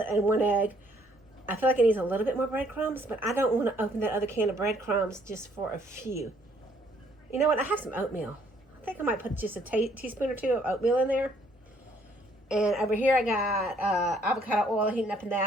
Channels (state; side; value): normal; both; correlation 0.65